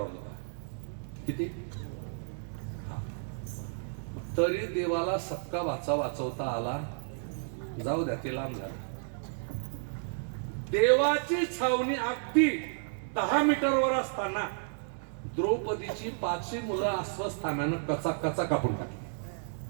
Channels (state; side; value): silent; left; digital silence